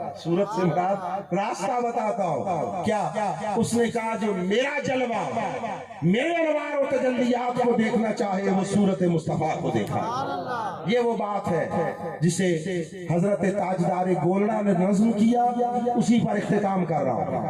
صورت سے مراد راستہ بتاتا ہوں. کیا اس نے کہا جو میرا جلوہ, میرے انوار و تجلیات کو دیکھنا چاہے وہ صورت مصطفیٰ کو دیکھا. یہ وہ بات ہے جسے حضرت تاجدار گولڑا نے نظم کیا, اسی پر اختتام کر رہا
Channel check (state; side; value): identical; both; correlation 1.00